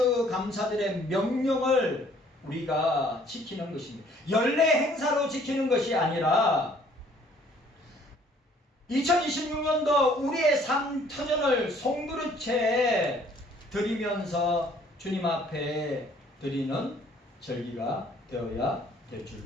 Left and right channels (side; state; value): both; normal; correlation 0.59